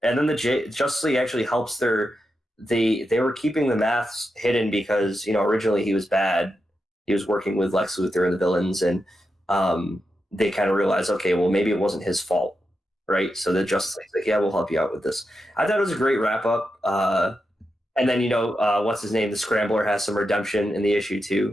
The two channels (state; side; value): normal; both; correlation 0.87